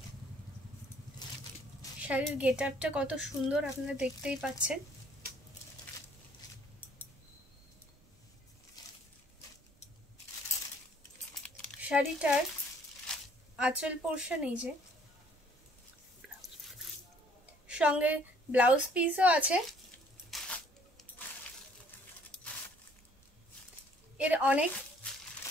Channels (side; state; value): both; normal; correlation 0.60